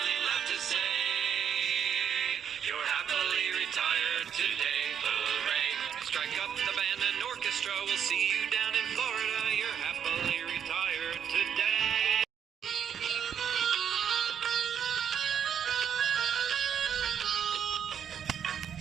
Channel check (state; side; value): quieter; left; 8.4 dB